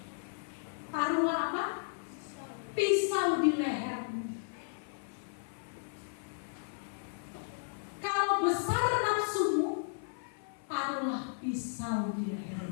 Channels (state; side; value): silent; right; 55 dB below the other